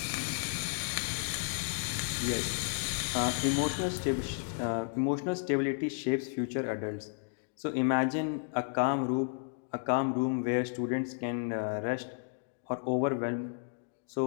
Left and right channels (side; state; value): right; silent; 56 dB below the other